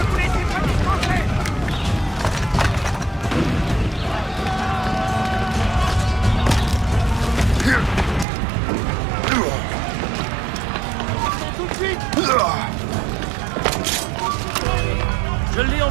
vous laissez pas distancer! Tout de suite! Je l'ai en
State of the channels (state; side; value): drops out; left; at 8.2 s